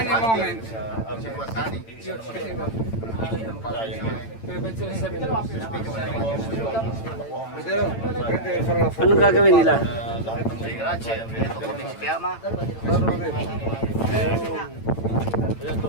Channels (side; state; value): right; late; 8.9 ms